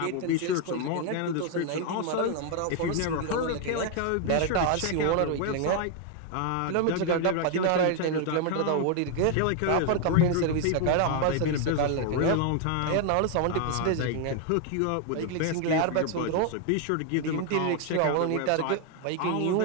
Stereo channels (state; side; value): different; both; correlation 0.00